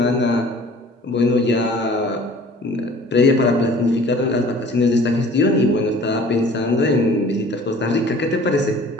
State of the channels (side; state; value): both; normal; correlation 0.49